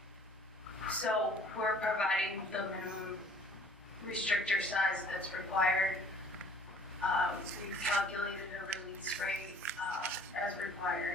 So we're providing the minimum restrictor size that's required. We've calculated a release rate as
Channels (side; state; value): both; normal; correlation 0.54